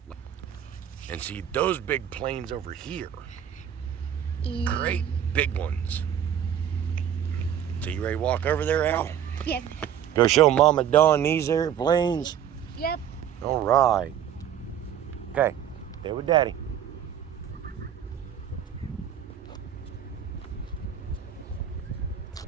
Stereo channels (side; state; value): left; quieter; 9.5 dB